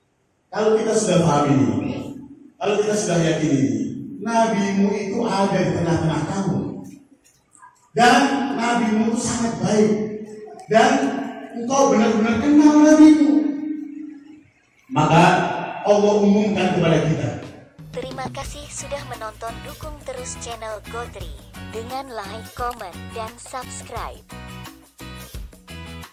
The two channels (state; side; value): identical; both; correlation 1.00